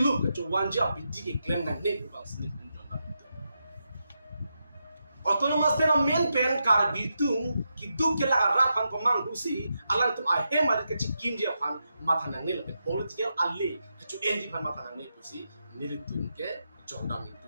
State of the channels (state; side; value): inverted; both; correlation -0.86